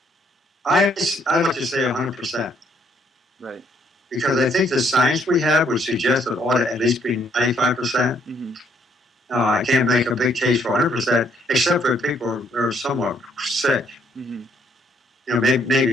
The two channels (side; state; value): both; normal; correlation 0.68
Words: I like to say 100%, Right. because I think the science we have would suggest that it ought to at least be 95%. Mm-hmm. I can't make a big case for 100%, except for people who are somewhat sick. Mm-hmm.